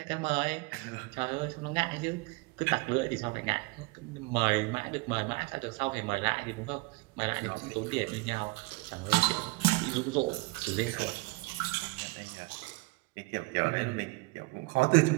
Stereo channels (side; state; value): left; quieter; 24.7 dB